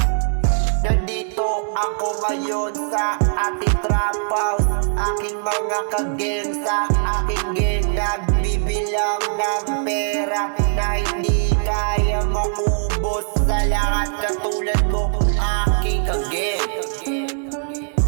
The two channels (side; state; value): left; silent; 65 dB below the other